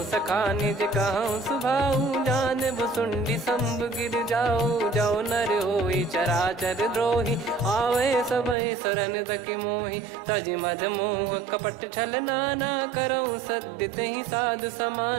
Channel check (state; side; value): drops out; left; at 8.6 s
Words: सखा निज कहूँ सुभाऊ जान भुसुंडी संभ गिर जाओ जाओ नर होई चराचर द्रोही आवे सबय शरण तक मोहि तज मद मोह कपट छल नाना करऊँ सत्य तहि साधु